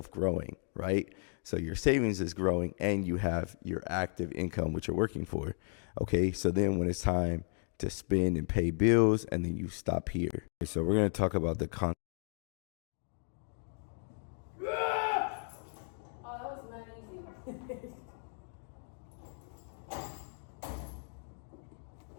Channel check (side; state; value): right; silent; 54 dB below the other